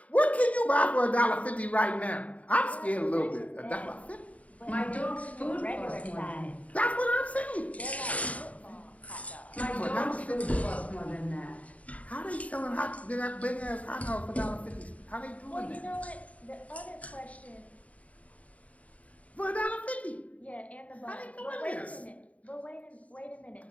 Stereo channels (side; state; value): right; late; 0.068 ms